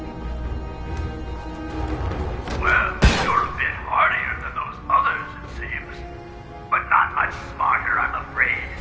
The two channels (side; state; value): both; identical; correlation 1.00